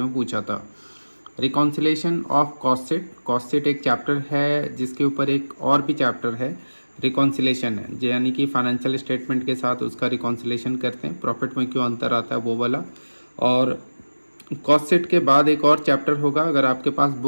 में पूछा था। रिकॉन्सिलेशन ऑफ कॉस्ट शीट एक चैप्टर है जिसके ऊपर एक और भी चैप्टर है, रिकॉन्सिलेशन है, यानी कि फाइनेंशियल स्टेटमेंट के साथ उसका रिकॉन्सिलेशन करते हैं, प्रॉफिट में क्यों अंतर आता है वो वाला। और कॉस्ट शीट के बाद एक और चैप्टर होगा, अगर आपके पास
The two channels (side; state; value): both; inverted; correlation -1.00